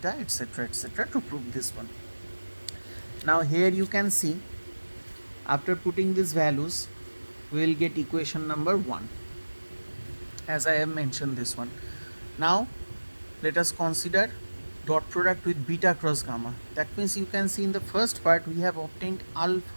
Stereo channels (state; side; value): inverted; both; correlation -1.00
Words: etc., to prove this one. Now here you can see after putting these values we will get equation number 1, as I have mentioned this one. Now let us consider dot product with beta cross gamma. That means you can see in the first part we have obtained